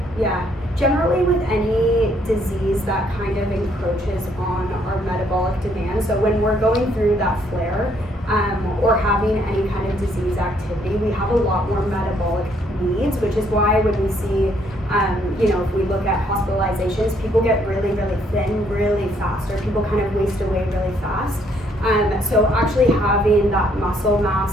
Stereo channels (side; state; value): both; normal; correlation 0.68